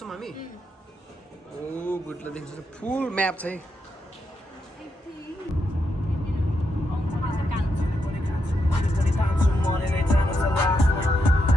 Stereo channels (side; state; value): both; normal; correlation 0.82